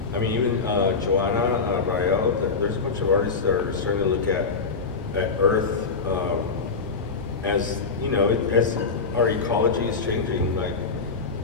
I mean, even Joanna Rael, there's a bunch of artists that are starting to look at Earth as, you know, as our ecology is changing, like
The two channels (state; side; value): quieter; right; 4.7 dB